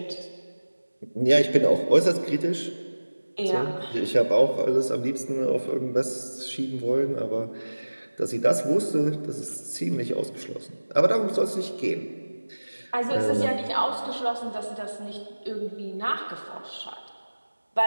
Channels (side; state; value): both; inverted; correlation -1.00